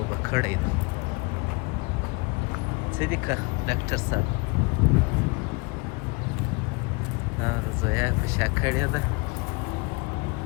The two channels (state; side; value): quieter; right; 28.2 dB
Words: به کړی ده. څه دي که ډاکټر صاحب؟ زویا یې په شا کړې ده.